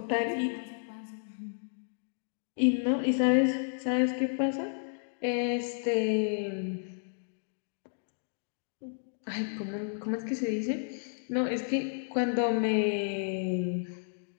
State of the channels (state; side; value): silent; right; digital silence